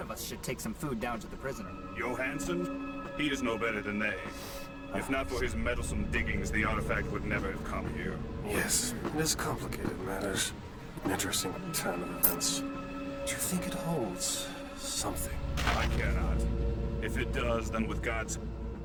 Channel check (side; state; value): both; identical; correlation 1.00